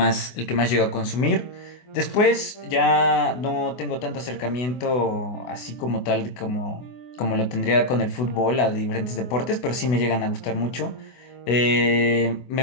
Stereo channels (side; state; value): right; late; 24 ms